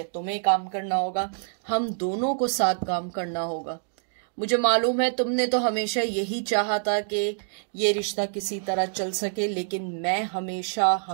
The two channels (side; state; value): left; silent; digital silence